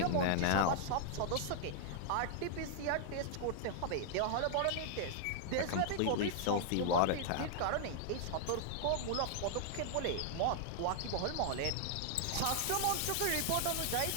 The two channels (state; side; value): different; both; correlation -0.01